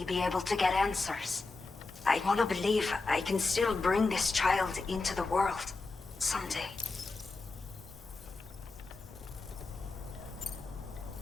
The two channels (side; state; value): right; quieter; 3.7 dB